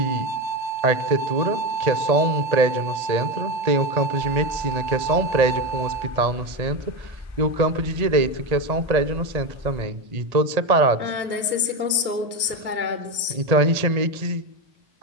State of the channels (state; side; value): late; left; 1.8 ms